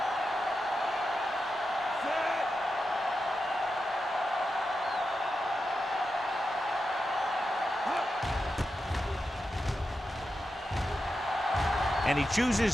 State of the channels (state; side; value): normal; both; correlation 0.89